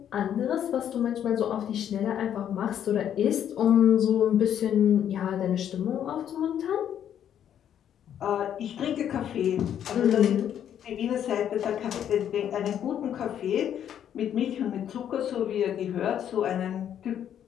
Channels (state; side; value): quieter; right; 9.7 dB